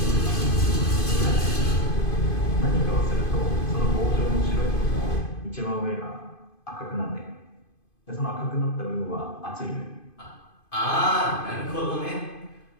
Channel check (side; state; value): right; late; 2.5 ms